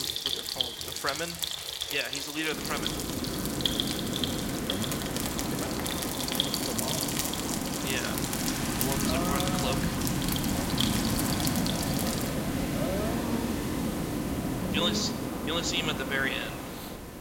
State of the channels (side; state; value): both; identical; correlation 1.00